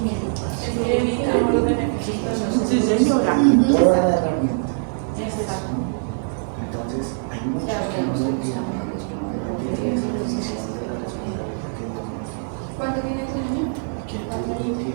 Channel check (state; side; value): silent; left; digital silence